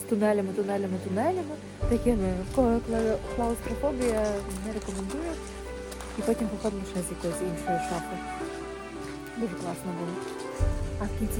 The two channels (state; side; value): identical; both; correlation 1.00